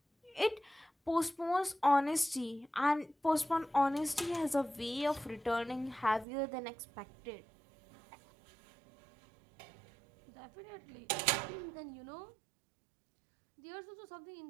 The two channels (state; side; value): drops out; left; at 6.2 s